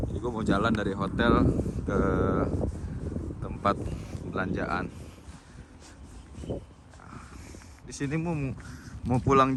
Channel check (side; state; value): both; identical; correlation 1.00